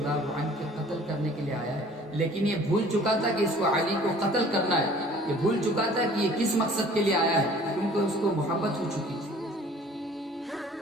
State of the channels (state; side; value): normal; both; correlation 0.51